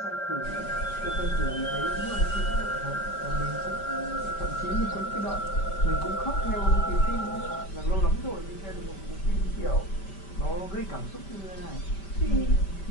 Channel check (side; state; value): right; late; 5.1 ms